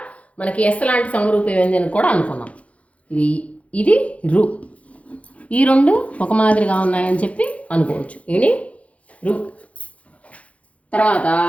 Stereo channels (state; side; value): late; right; 0.065 ms